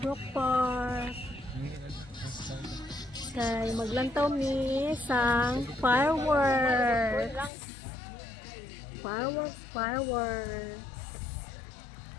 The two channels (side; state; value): right; drops out; at 7.5 s